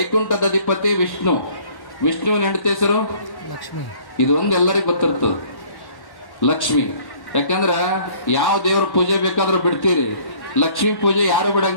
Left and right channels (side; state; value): right; late; 1.1 ms